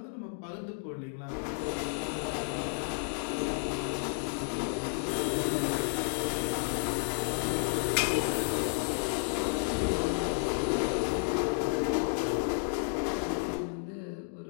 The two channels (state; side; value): silent; right; 56 dB below the other